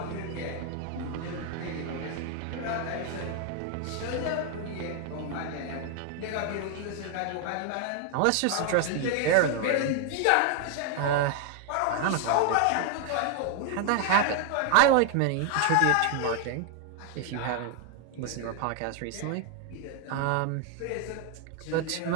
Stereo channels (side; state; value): both; different; correlation 0.00